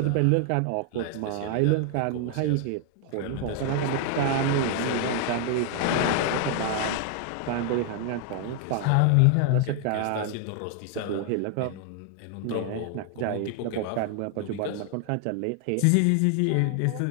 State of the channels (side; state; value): both; different; correlation 0.00